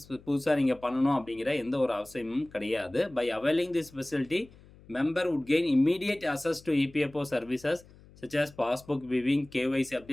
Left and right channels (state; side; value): noise; left; hum, 24 dB below the sound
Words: புதுசாக நீங்கள் பண்ணணும் அப்படிங்கிற எந்த ஒரு அவசியமும் கிடையாது. By availing this facility, member would gain immediate access to EPFO services such as passbook viewing, KYC